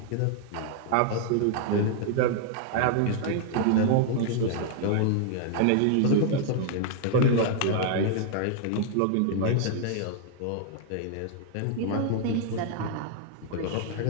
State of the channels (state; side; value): different; both; correlation -0.01